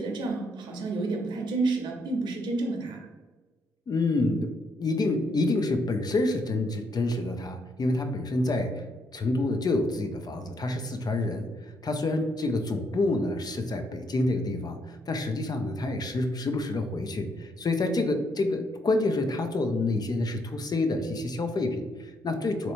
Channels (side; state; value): both; normal; correlation 0.75